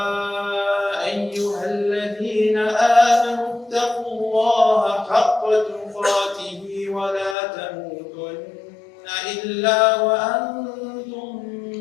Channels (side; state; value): right; drops out; at 7.4 s